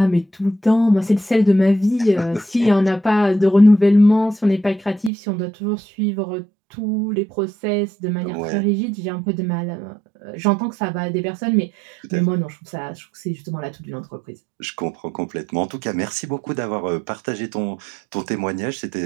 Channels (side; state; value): left; drops out; at 5.1 s